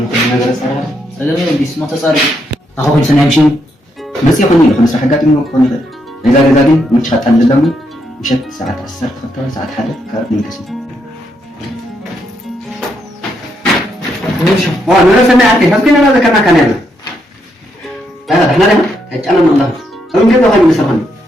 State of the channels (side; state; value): both; normal; correlation 0.78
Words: نقدر صراحة هذا بس ما تصارف أخو كل سنة يمشي بس يخوني لو خمس حاجات منه يخوني غير إذا جزا دي مش خطأ للدم مشت ساعات 10 خطأ ساعات حدث كارت من كسي أنا سمعت عارفين بس كنا هذا كنا كلامنا هذا إحنا لنا أنا من الله هم كده خلي مسافن